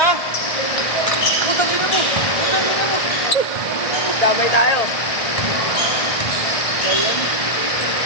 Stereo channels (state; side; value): late; right; 1.7 ms